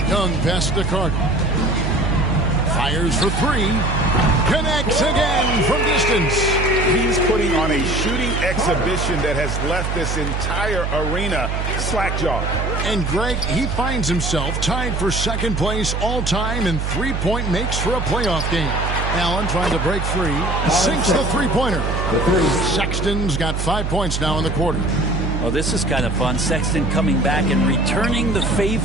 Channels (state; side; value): noise; right; hum, 1 dB below the sound